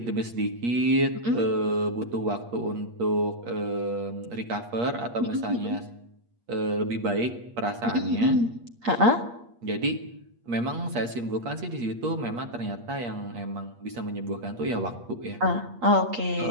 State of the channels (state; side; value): late; left; 8.5 ms